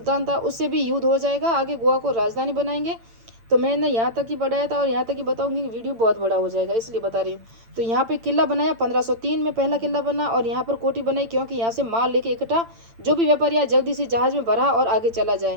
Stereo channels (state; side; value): late; left; 8.8 ms